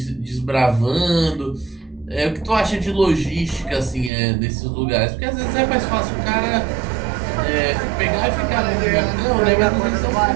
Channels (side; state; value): left; drops out; at 4.1 s